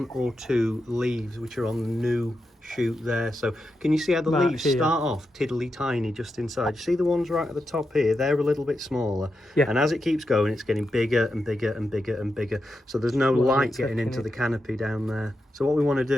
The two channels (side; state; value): both; normal; correlation 0.87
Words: or 2 leaves which are on the new shoot there. So can you see how the leaves start off tiddly tiny just inside? You see the ones right at the top here? They're a little bit smaller. Yeah. And as it keeps going, it's getting bigger and bigger and bigger and bigger. So there's no light getting into the canopy down there. So what we want to